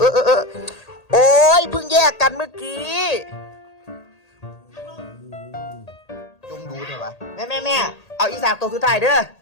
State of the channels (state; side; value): late; right; 1.8 ms